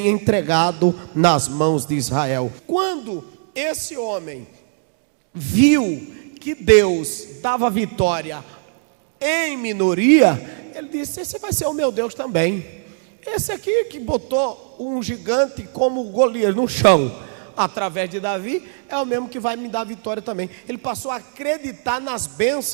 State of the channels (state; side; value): silent; left; digital silence